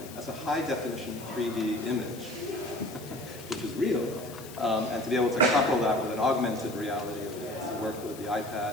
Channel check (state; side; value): noise; left; hiss, 16 dB below the sound